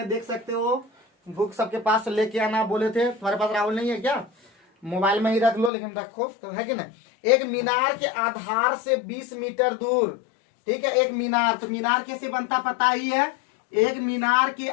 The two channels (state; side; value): drops out; right; at 5.7 s